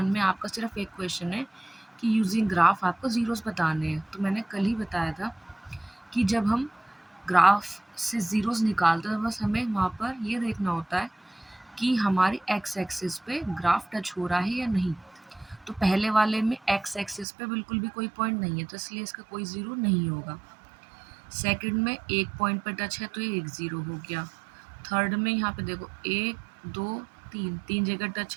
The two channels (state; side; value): drops out; left; at 17.2 s